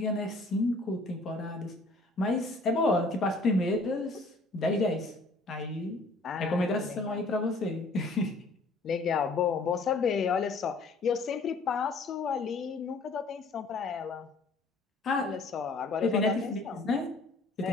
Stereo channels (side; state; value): right; quieter; 3.2 dB